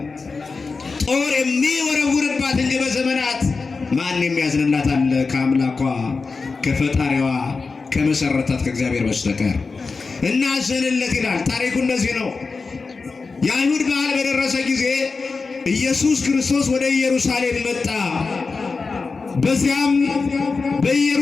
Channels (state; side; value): quieter; right; 4.4 dB